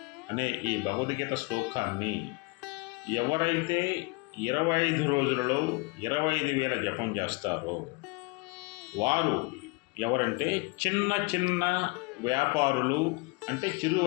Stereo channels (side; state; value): right; quieter; 27.6 dB